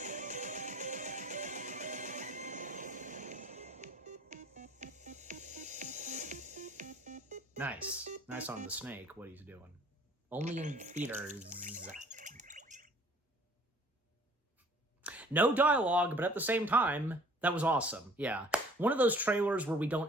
Nice. Nice on the snake, what he's doing. Only in theaters. No dialogue, but at the same time, that was awesome. Yeah. One of those trailers where we don't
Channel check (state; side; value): normal; both; correlation 0.54